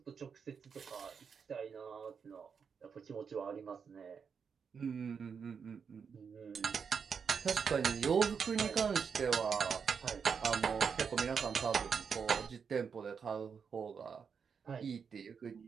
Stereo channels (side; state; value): left; quieter; 6.3 dB